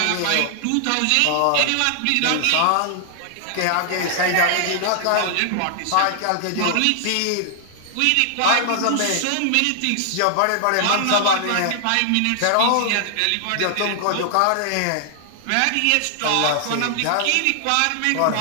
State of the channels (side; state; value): both; different; correlation -0.01